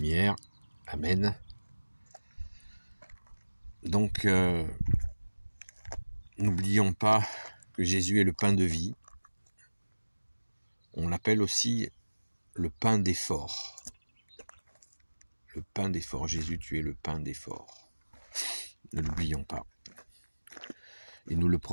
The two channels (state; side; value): inverted; both; correlation -1.00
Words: Amen. Donc, n'oublions pas que Jésus est le pain de vie. On l'appelle aussi le pain d'effort. Le pain d'effort. Jésus, tu es le pain d'effort. Ne l'oublions pas. Et nous le